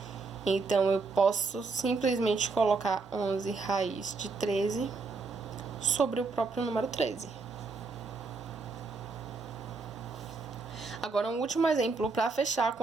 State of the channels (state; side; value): quieter; left; 4.2 dB